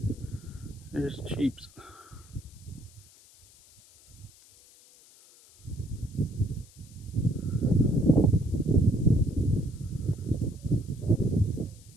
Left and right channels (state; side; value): noise; left; hiss, 25 dB below the sound